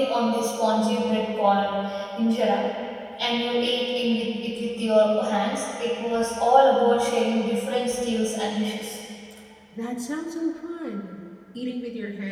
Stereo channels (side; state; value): both; identical; correlation 1.00